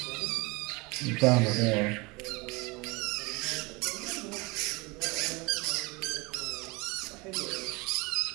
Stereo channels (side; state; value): left; quieter; 26.2 dB